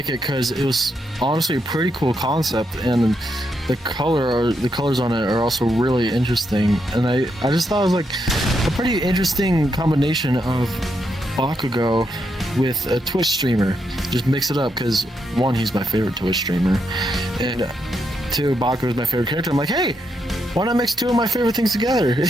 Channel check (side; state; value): both; normal; correlation 0.81